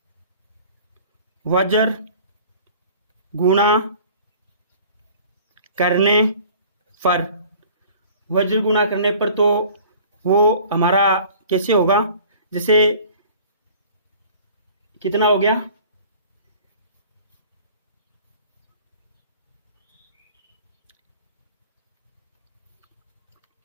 वज्र गुणा करने पर, वज्र गुणा करने पर तो वो हमारा कैसे होगा, जैसे कितना हो गया,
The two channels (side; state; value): both; inverted; correlation -0.48